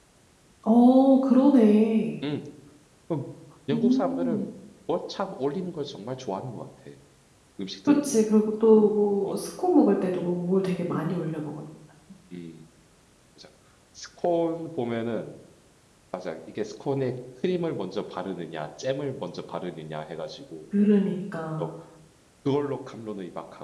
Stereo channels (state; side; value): identical; both; correlation 1.00